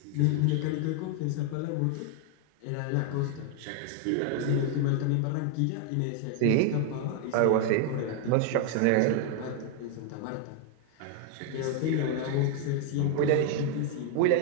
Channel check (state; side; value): different; both; correlation 0.00